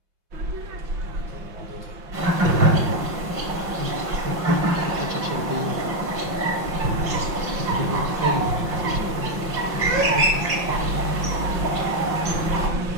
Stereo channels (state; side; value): late; left; 5.7 ms